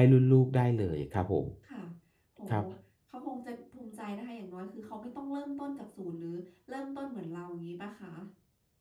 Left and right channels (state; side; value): identical; both; correlation 1.00